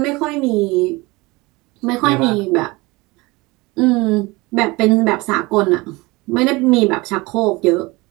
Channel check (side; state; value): left; quieter; 23.2 dB